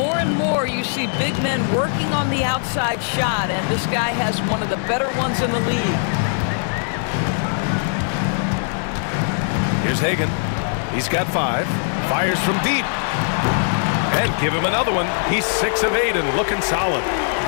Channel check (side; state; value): right; silent; 65 dB below the other